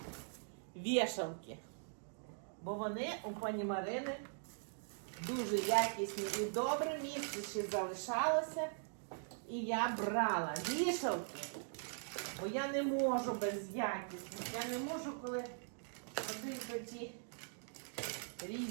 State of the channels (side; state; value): left; silent; digital silence